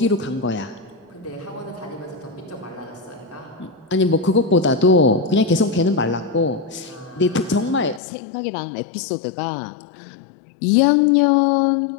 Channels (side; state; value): right; drops out; at 8.0 s